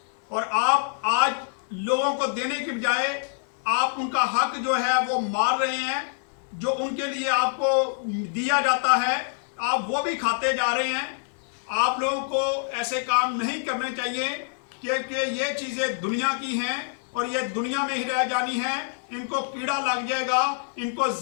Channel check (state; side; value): silent; right; 61 dB below the other